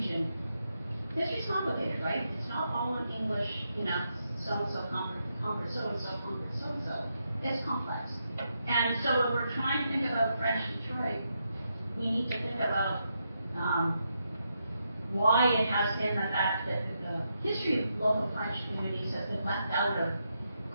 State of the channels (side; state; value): both; inverted; correlation -0.82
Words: history's complicated, right? It's not all in English, you know, so-and-so conquered so-and-so conquered so-and-so. It's complex. And so when we're trying to think about French Detroit, we need to think about why it has been the fact that the history of local French communities has been left out of